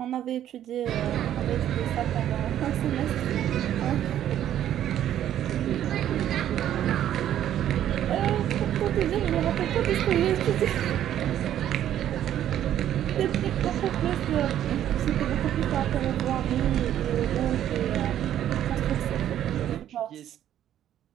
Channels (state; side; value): quieter; left; 11.3 dB